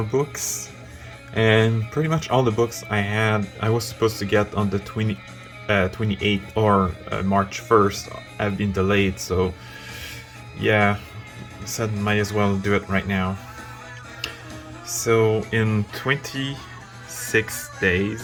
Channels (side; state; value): both; identical; correlation 1.00